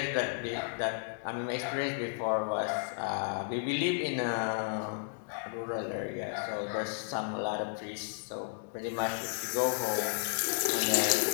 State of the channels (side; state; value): right; silent; digital silence